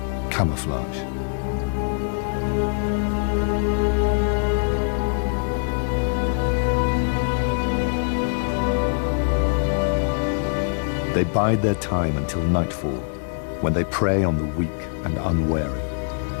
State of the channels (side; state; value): right; silent; digital silence